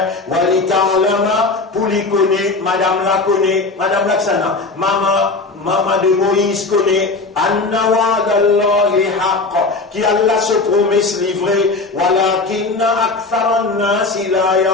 wali ta'lama, pour lui connaître, madame la connaît, madame Laksana, maman de Moïse connaît, anna wa'dallahi haqq, qui Allah se promesse livré, walakinna aktharan nasi la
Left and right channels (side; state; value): right; quieter; 3.7 dB